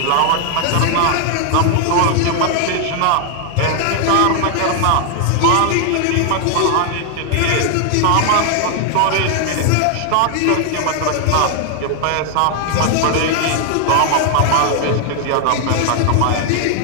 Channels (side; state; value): both; different; correlation 0.00